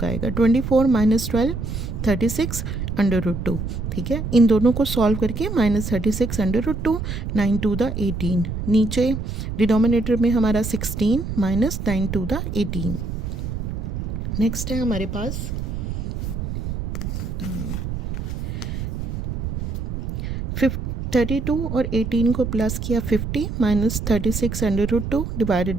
आएगा। 24 माइनस 12 36 √2। ठीक है, इन दोनों को सॉल्व करके माइनस 36 √2 9 to the 18। नीचे डिनोमिनेटर में हमारा 16 माइनस 9 to the 18। नेक्स्ट है हमारे पास 32 और 18 को प्लस किया 50 माइनस 36 √2 डिवाइडेड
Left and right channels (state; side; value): noise; right; rumble, 4 dB below the sound